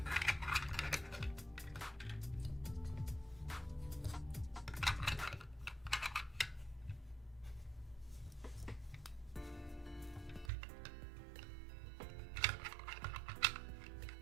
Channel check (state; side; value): drops out; left; at 10.5 s